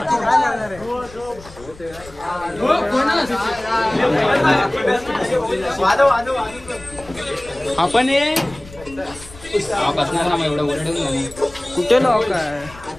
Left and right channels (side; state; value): left; noise; rumble, 20 dB below the sound